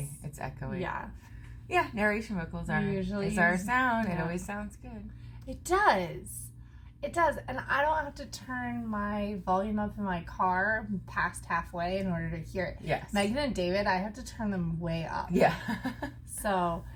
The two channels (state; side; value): identical; both; correlation 1.00